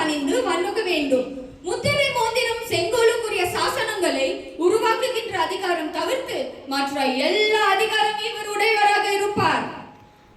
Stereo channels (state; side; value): identical; both; correlation 1.00